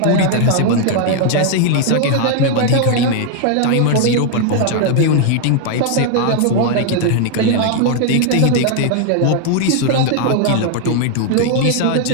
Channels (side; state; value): both; different; correlation 0.00